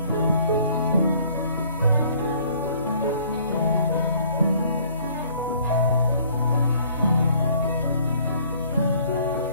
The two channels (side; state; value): both; inverted; correlation -0.58